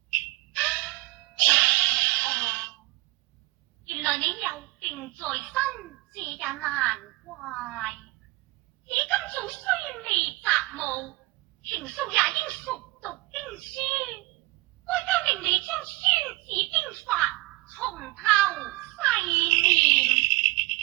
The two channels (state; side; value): quieter; left; 21.0 dB